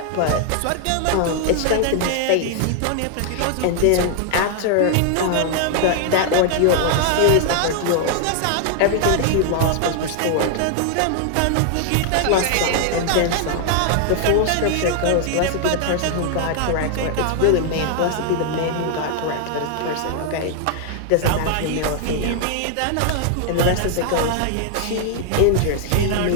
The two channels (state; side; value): different; both; correlation 0.00